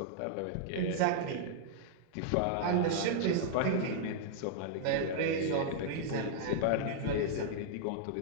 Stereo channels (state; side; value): different; both; correlation -0.01